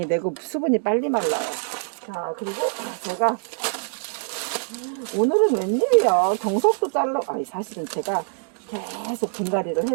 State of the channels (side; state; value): left; silent; 62 dB below the other